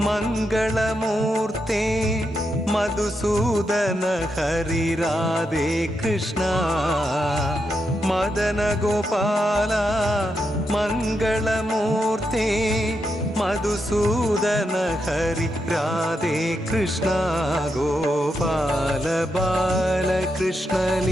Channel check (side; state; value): both; normal; correlation 0.84